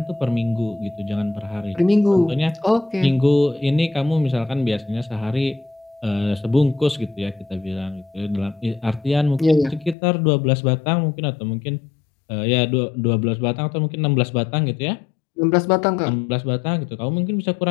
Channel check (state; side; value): drops out; right; at 10.0 s